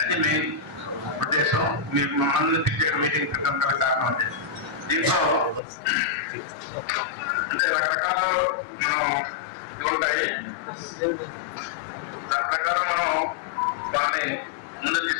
మెయిన్ ఉద్దేశం. మీకు మమ్మల్ని పిలిచే మీటింగ్ పెట్టడం గల కారణం అంటే దీంట్లో అంటే రకరకాల మనం ఉంటాయి. దాని ప్రకారం మనం వాళ్ళని ముందు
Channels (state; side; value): drops out; right; at 5.6 s